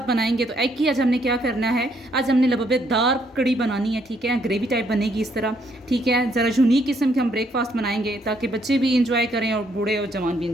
बनाएंगे। तो एग की आज हमने क्या करना है, आज हमने लबेदार कड़ी बनानी है, ठीक है, ग्रेवी टाइप बनेगी इस तरह, ठीक है। ज़रा यूनिक किस्म के हम ब्रेकफास्ट बनाएंगे ताकि बच्चे भी इंजॉय करें और बूढ़े और जवान भी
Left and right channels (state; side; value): normal; both; correlation 0.71